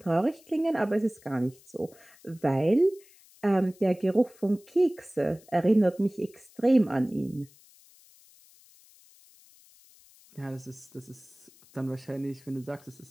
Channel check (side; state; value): left; noise; hiss, 27 dB below the sound